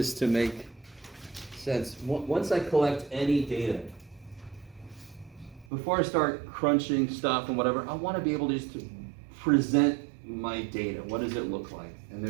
to make sense. Once I collect any data, before I start crunching stuff and whatever, I want to be able to just present my data. What does it look like? And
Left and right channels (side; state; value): left; drops out; at 5.7 s